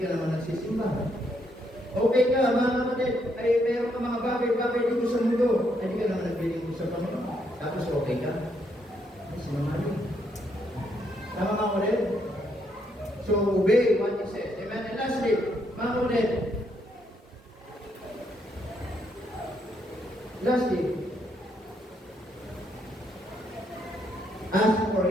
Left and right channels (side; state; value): both; normal; correlation 0.75